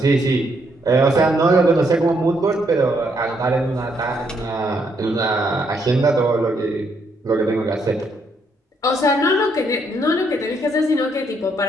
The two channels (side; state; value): both; normal; correlation 0.73